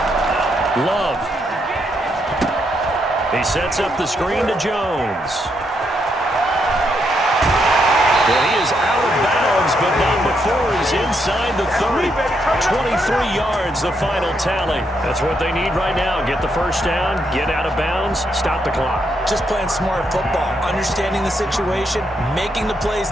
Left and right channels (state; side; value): normal; both; correlation 0.78